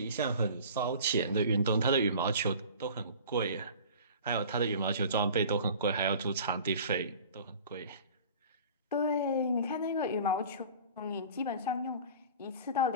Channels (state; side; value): inverted; both; correlation -0.42